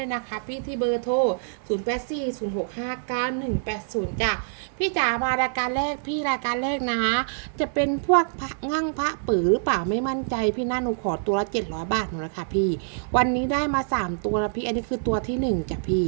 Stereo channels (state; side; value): silent; left; digital silence